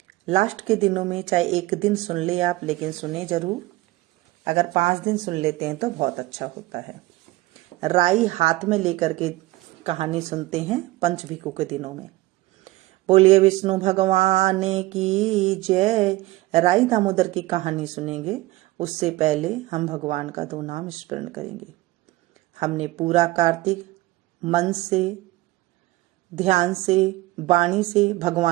लास्ट के दिनों में चाहे एक दिन सुन ले आप, लेकिन सुने जरूर। अगर 5 दिन सुन लेते हैं तो बहुत अच्छा होता है। राई हाथ में लेकर के कहानी सुनते हैं पंचभिकु के दिनों में। बोलिए विष्णु भगवान की जय। राई दामोदर की कहानी सुनेंगे उससे पहले हम भगवान का 2 नाम स्मरण करेंगे। हमने पूरा कार्तिक मन से, ध्यान से, वाणी से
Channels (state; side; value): quieter; left; 18.7 dB